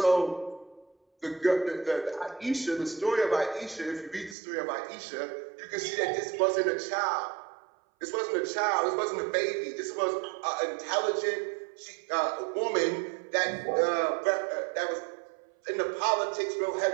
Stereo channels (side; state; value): left; drops out; at 4.4 s